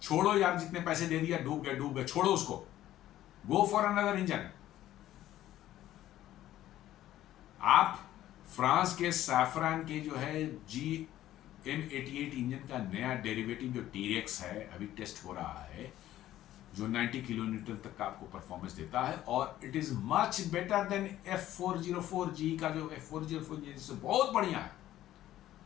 छोड़ो यार, जितने पैसे दे दिया, डूब गए, छोड़ो उसको, गो फॉर अनदर इंजन। आप फ्रांस के सैफरान के जो है GM88 इंजन का नया डेरिवेटिव जो टीरेक्स है, अभी टेस्ट हो रहा है, जो 90 किलोमीटर तक का आपको परफॉर्मेंस देता है, और it is much better than F404G का जो F404 इंजन से बहुत बढ़िया है।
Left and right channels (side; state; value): right; quieter; 13.5 dB